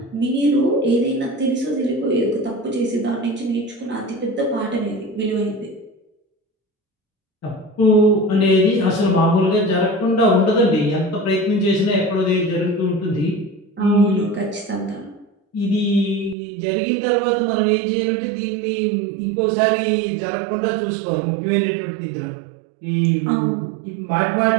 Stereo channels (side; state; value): left; drops out; at 16.4 s